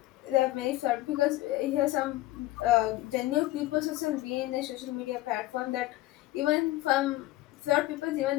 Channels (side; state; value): right; quieter; 17.4 dB